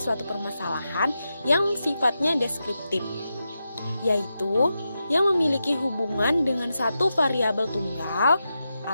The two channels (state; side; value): inverted; both; correlation -0.88